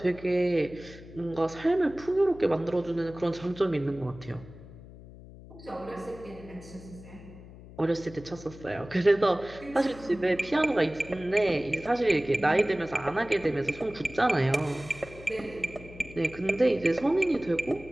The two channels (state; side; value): noise; left; hum, 18 dB below the sound